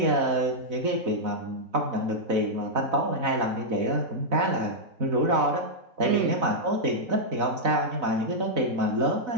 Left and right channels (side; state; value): left; late; 4.0 ms